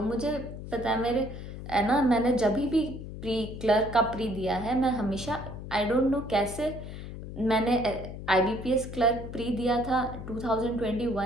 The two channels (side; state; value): left; noise; hum, 10 dB below the sound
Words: मुझे पता है, मेरे है ना, मैंने जब भी प्री क्लर्क का प्री दिया है, मैं हमेशा, आई डोंट नो कैसे, मैंने IBPS क्लर्क प्री दिया था